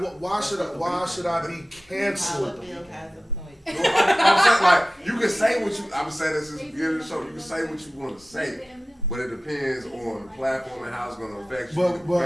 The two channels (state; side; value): normal; both; correlation 0.95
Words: though. why should I be Dollar canceled? Bill has a point. I'm saying, like, you can say what you, I'm saying this since the beginning of the show, you can say what you want to say, but it depends on the platform and how it's going to affect you,